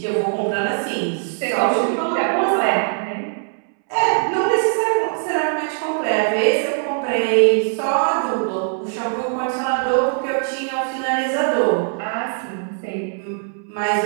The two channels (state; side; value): silent; left; 65 dB below the other